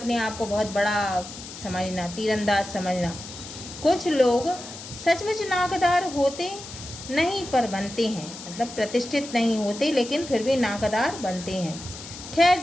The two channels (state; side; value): noise; left; hiss, 13 dB below the sound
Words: आप को बहुत बड़ा समझना, तीरंदाज समझना। कुछ लोग सचमुच नाकदार होते नहीं पर बनते हैं, मतलब प्रतिष्ठित नहीं होते लेकिन फिर भी नाकदार बनते हैं। खैर